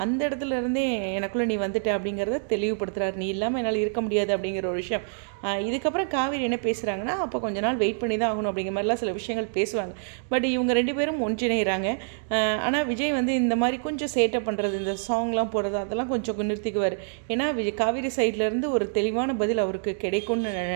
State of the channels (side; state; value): left; silent; digital silence